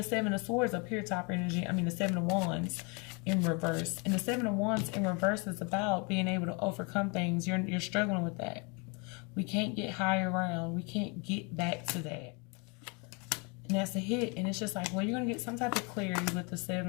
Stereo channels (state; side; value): quieter; right; 32.1 dB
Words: 7 of Swords up here, top energy. I mean, the 7 of Wands in reverse. And the 7 of Wands in reverse is about being able to overcome things. You're struggling with that. We can't get higher around. We can't get back to that. And that's a hit. And it's just like, well, you're going to get some type of clarity with